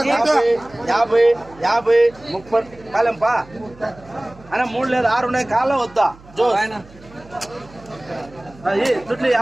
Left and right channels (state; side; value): noise; right; hum, 23 dB below the sound